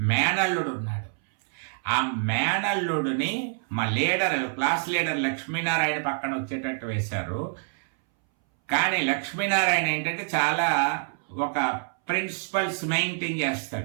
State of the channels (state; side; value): silent; left; 61 dB below the other